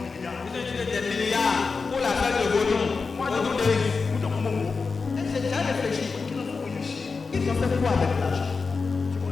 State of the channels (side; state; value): right; quieter; 4.6 dB